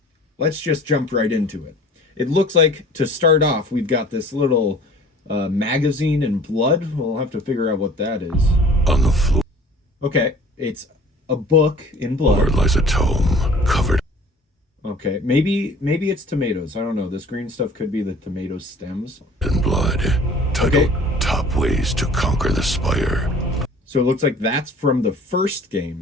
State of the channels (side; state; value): both; normal; correlation 0.48